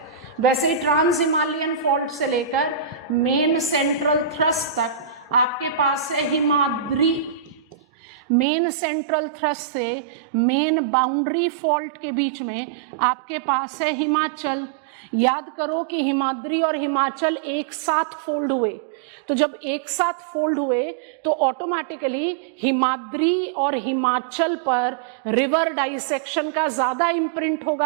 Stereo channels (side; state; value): left; drops out; at 8.5 s